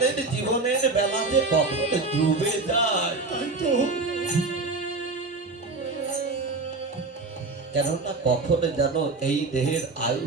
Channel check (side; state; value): left; quieter; 3.7 dB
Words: জীবনের বেলাতে কখন ডুবে যায়, তাই তো কেননা কখন যেন এই দেহের আয়ু